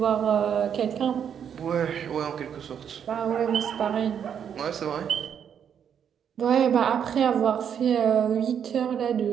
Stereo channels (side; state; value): left; quieter; 8.3 dB